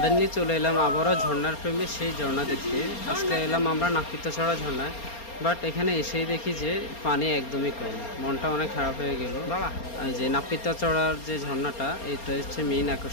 চলে এলাম আবারও ঝর্ণার প্রেমে সেই ঝর্ণা দেখতে। আজকে এলাম আমরা নাপিতাছড়া ঝর্ণায়, বাট এখানে এসেই দেখি যে পানি একদমই কম, মনটা অনেক খারাপ হয়ে গেল। এই যে নাপিতাছড়ার যে ঝর্ণাটা, এটা হচ্ছে মেইন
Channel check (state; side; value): late; right; 4.3 ms